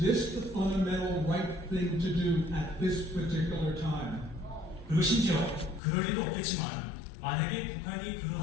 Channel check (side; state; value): right; drops out; at 5.8 s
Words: the fundamental right thing to do at this particular time? 그리고 심지어 그럴 일도 없겠지만 만약에 북한이